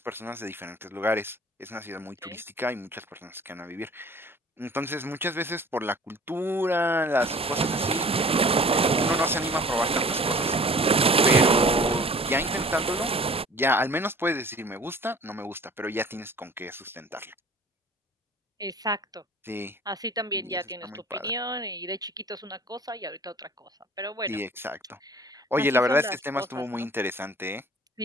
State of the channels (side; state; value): both; normal; correlation 0.47